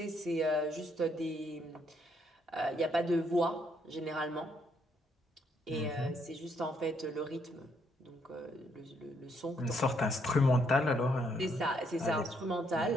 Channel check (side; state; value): both; normal; correlation 0.72